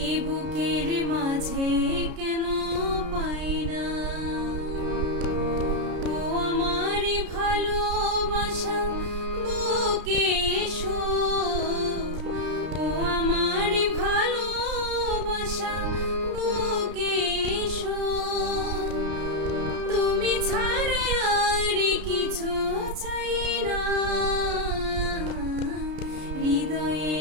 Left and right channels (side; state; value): left; late; 33 ms